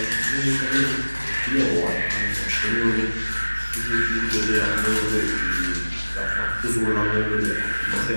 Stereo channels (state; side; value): inverted; both; correlation -1.00